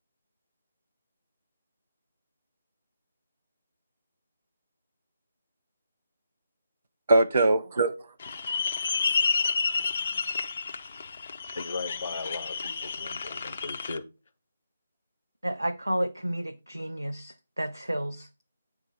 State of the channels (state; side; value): inverted; both; correlation -0.82